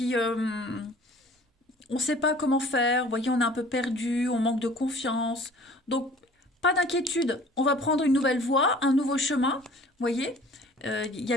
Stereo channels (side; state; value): both; normal; correlation 0.49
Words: on ne sait pas comment faire, vous voyez, on est un peu perdu, on manque de confiance. Donc, pas d'inquiétude, on va prendre une nouvelle voie, un nouveau chemin, vous voyez. Il y a